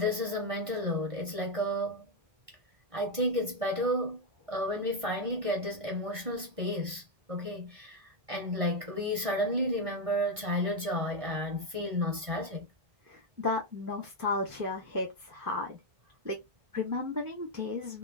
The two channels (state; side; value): late; left; 1.6 ms